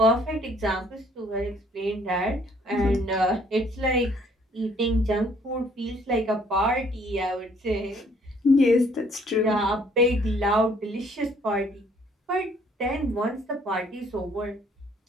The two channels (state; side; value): normal; both; correlation 0.62